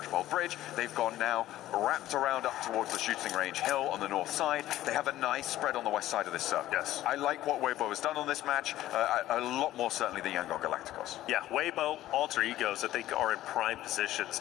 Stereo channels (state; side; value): quieter; right; 14.3 dB